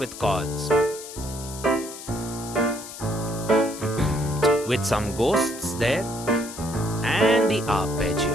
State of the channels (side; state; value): left; noise; hiss, 12 dB below the sound